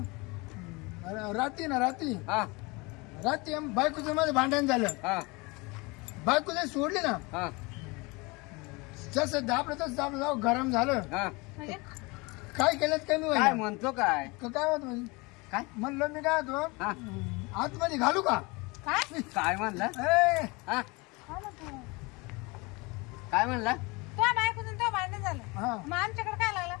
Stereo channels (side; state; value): right; quieter; 26.1 dB